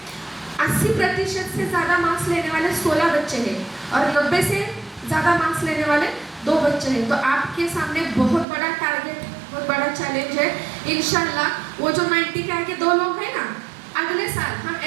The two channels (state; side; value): drops out; left; at 8.5 s